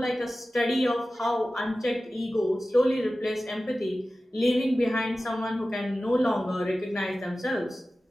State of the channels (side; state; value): both; normal; correlation 0.95